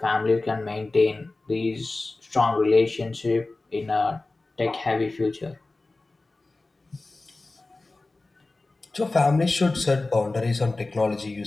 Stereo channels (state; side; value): quieter; right; 3.2 dB